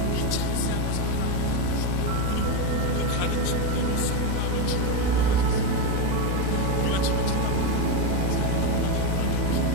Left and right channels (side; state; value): both; different; correlation 0.05